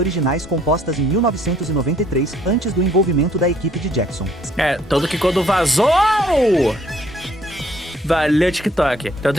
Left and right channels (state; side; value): normal; both; correlation 0.62